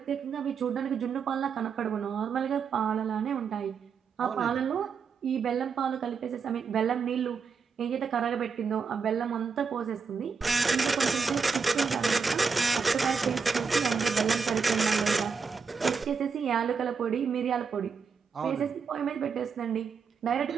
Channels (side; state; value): left; quieter; 5.6 dB